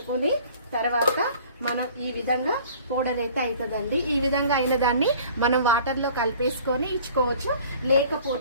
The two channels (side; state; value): both; inverted; correlation -0.50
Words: తర్వాత మనం ఈ విధంగా పౌడర్ అయితే అవుతుందండి. ఈ విధంగా అయిన దాన్ని మనం వాటర్లో కలిపేసుకొని ఇచ్చుకోవచ్చు.